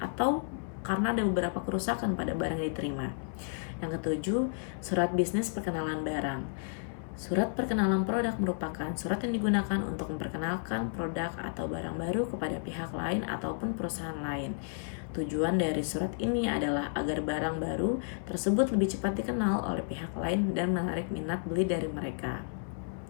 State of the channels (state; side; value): silent; right; 56 dB below the other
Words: atau karena ada beberapa kerusakan pada barang yang diterima. Yang ketujuh, surat bisnis perkenalan barang. Surat perkenalan produk merupakan surat yang digunakan untuk memperkenalkan produk atau barang baru kepada pihak lain ataupun perusahaan lain. Tujuan dari surat ini adalah agar barang baru tersebut lebih cepat dikenal oleh pihak lain dan menarik minat beli dari mereka.